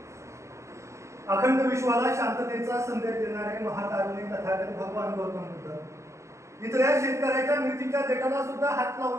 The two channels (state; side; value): late; left; 0.14 ms